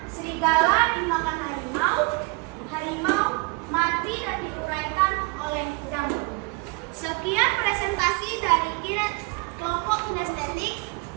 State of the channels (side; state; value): left; quieter; 28.3 dB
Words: serigala dimakan harimau, harimau mati dan diuraikan oleh jamur. Sekian presentasi dari kelompok kinestetik.